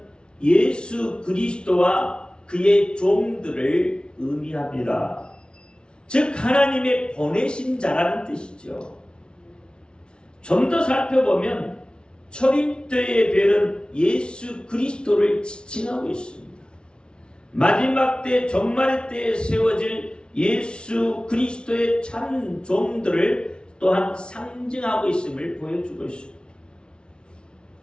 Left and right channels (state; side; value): late; right; 0.056 ms